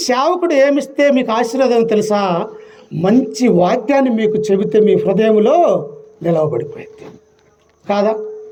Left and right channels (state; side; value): identical; both; correlation 1.00